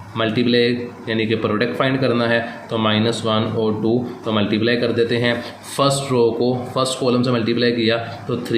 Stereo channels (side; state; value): both; identical; correlation 1.00